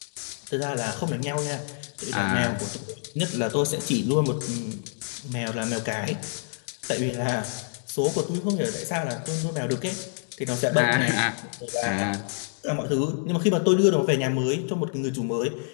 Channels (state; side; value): silent; right; digital silence